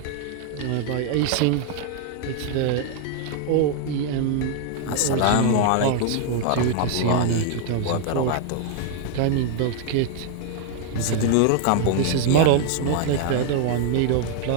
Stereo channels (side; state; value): both; different; correlation 0.00